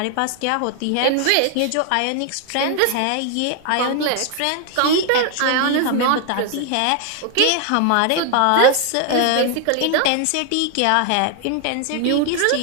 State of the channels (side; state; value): both; different; correlation 0.00